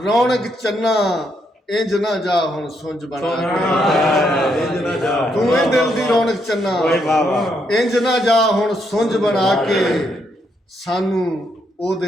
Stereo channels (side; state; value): both; normal; correlation 0.76